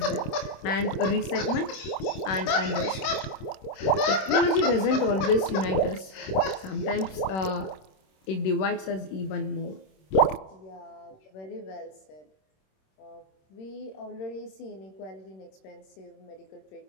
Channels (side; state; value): right; late; 26 ms